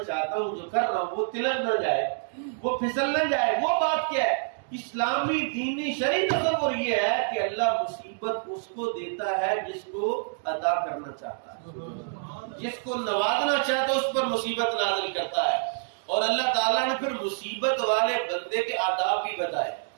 چاہتا ہوں، جو کر رہا ہوں، وہ تلک نہ جائے، وہ پھسل نہ جائے۔ وہ بات کیا ہے؟ اسلامی دینی شرعی تصور یہ ہے کہ اللہ مصیبت اس کو دیتا ہے جس کو عطا کرنا چاہتا ہے، جس کو نوازنا چاہتا ہے اس پر مصیبت نازل کرتا ہے۔ اور اللہ تعالیٰ نے پھر مصیبت والے بندے کے آداب بھی بتائے،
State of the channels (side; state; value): left; silent; digital silence